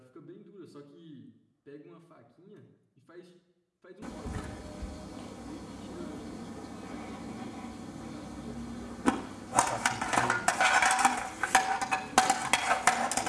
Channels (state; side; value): identical; both; correlation 1.00